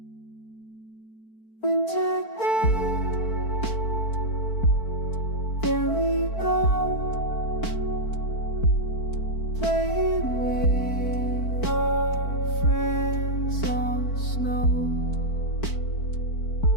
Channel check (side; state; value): right; late; 4.5 ms